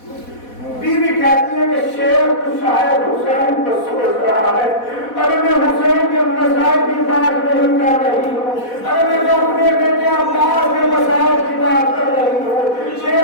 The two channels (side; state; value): right; late; 4.1 ms